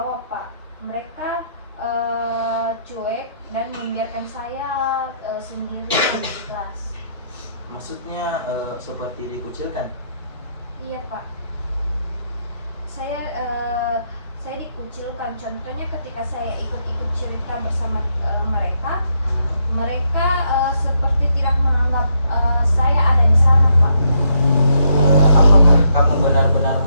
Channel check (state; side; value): inverted; both; correlation -0.76